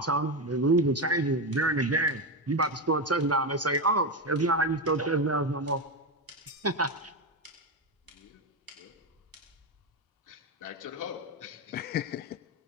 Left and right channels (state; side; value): normal; both; correlation 0.13